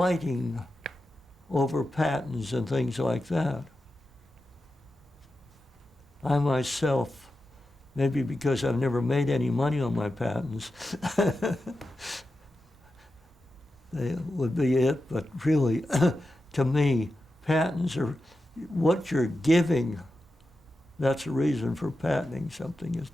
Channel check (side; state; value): both; normal; correlation 0.91